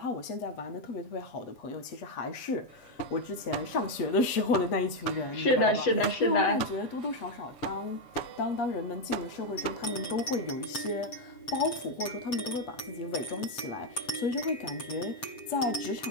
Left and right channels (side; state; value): right; late; 7.5 ms